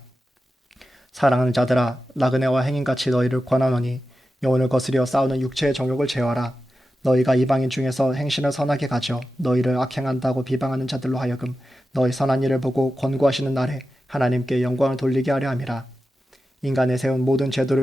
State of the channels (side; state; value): both; normal; correlation 0.92